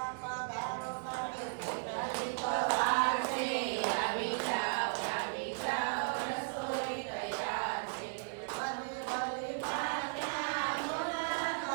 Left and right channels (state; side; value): silent; left; digital silence